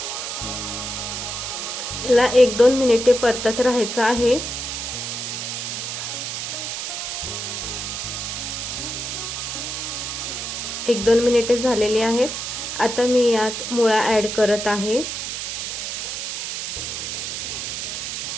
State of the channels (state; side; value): noise; right; hiss, 4 dB below the sound